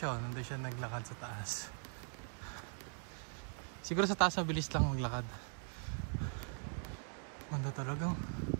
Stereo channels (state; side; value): silent; left; 50 dB below the other